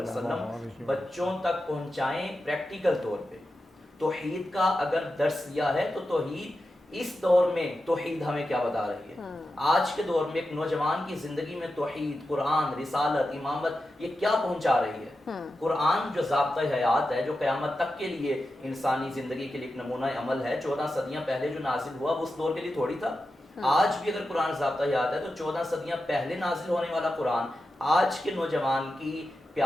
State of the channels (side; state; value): both; normal; correlation 0.91